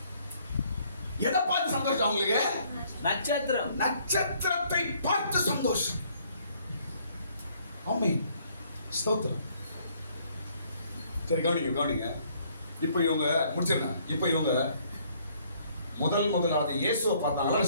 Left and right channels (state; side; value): inverted; both; correlation -0.64